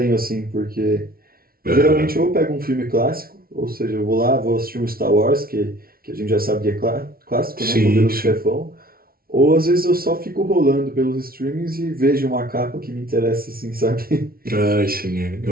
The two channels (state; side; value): late; left; 0.43 ms